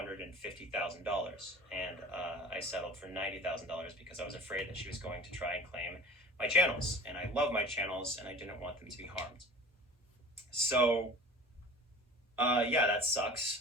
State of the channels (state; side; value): normal; both; correlation 0.41